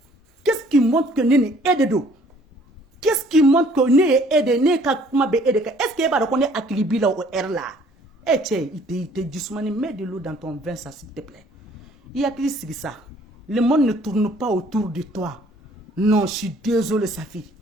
qu'est-ce qui montre que ne ni e de don qu'est-ce qui montre que ne ye e de ne ka kuma bɛ e de kan est-ce que e b'a dɔn ko ne hakili b'i la o heure la cɛ i tɛ jisumani mets de l'eau dans ton vin ça s'il te plaît i hakili sigi sa le monde ne tourne pas autour de toi non je suis désolé Safi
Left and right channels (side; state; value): both; normal; correlation 0.58